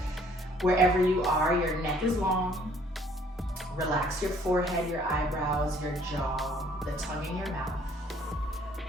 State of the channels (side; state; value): both; normal; correlation 0.60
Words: Wherever you are, your neck is long. Relax your forehead, your eyebrows, your jaw, the tongue in your mouth.